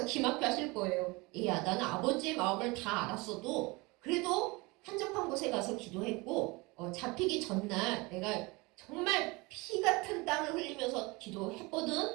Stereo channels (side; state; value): left; quieter; 24.9 dB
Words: 기막혀 하실 거예요. 야, 나는 아버지의 마음을 다 알았어도 그래도 한적한 곳에 가서 기도했고 잡히기 전날 내가 정말 피 같은 땀을 흘리면서